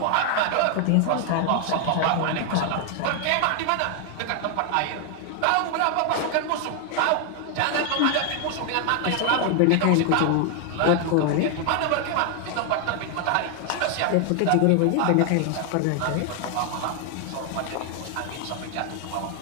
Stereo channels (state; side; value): different; both; correlation 0.00